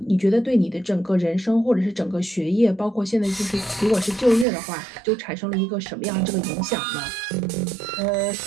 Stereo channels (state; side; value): drops out; left; at 4.5 s